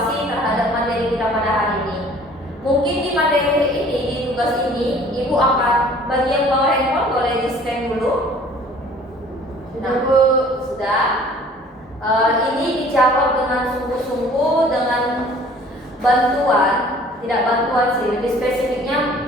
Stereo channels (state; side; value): normal; both; correlation 0.52